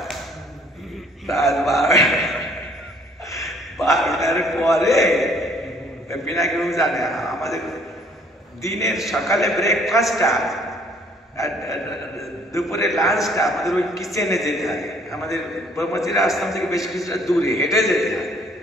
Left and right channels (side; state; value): both; normal; correlation 0.60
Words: রাত 12টার পরে পিনাকি বাবু জানে আমাদের দিনের সকালে ব্রেকফাস্টটা আর দুপুরে লাঞ্চটা আমাদের ওই কিচেনে যেতে হয়। আমাদের ব্রহ্মচিরা আশ্রম থেকে বেশ কিছুটা দূরে হেঁটে যেতে হয়।